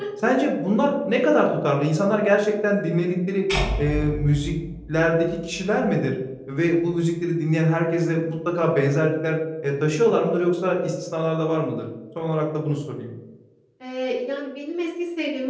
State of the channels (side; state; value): both; identical; correlation 1.00